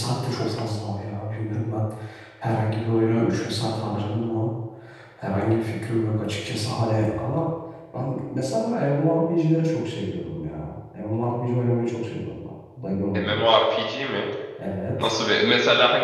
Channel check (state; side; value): identical; both; correlation 1.00